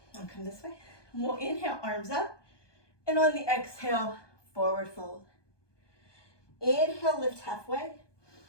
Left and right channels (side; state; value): right; late; 1.2 ms